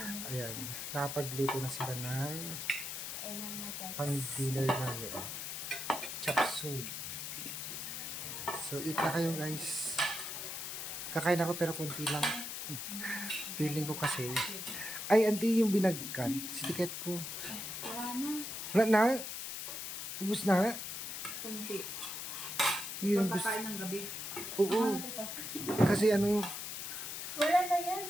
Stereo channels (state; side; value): noise; left; hiss, 5 dB below the sound